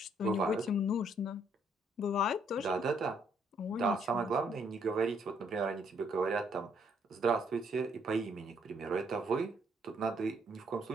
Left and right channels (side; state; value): both; normal; correlation 0.69